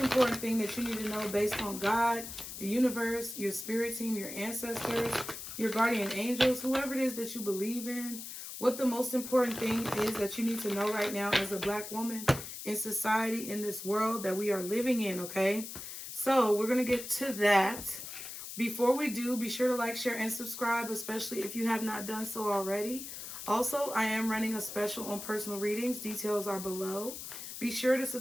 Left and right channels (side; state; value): left; noise; hiss, 9 dB below the sound